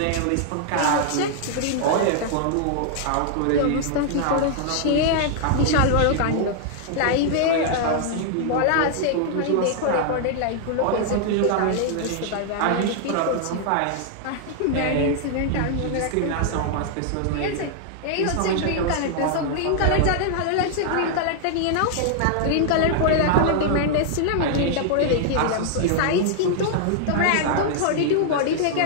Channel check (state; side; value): different; both; correlation -0.01